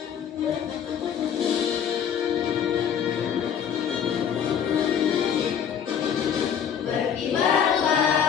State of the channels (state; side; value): quieter; right; 8.2 dB